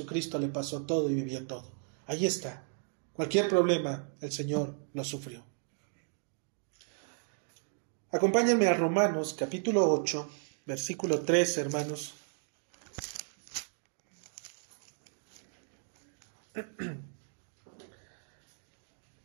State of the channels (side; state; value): left; silent; 55 dB below the other